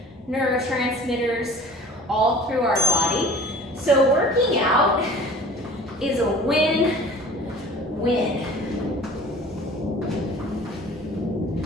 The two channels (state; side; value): normal; both; correlation 0.45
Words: neurotransmitters all through our body. So working out is a win-win.